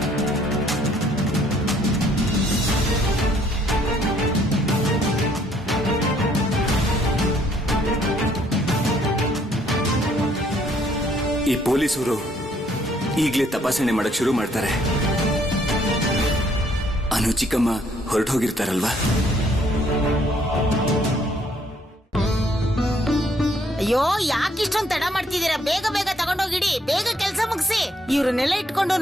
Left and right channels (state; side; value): normal; both; correlation 0.66